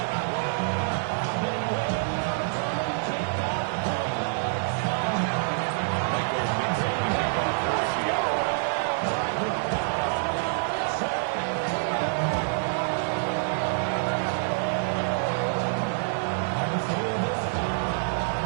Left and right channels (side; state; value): left; silent; 60 dB below the other